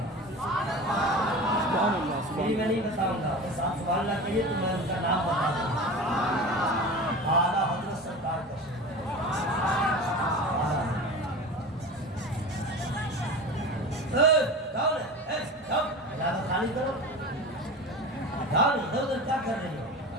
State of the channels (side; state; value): both; normal; correlation 0.32